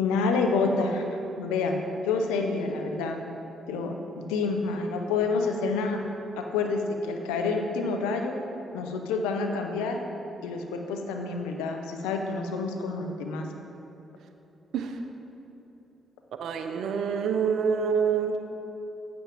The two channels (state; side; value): normal; both; correlation 0.52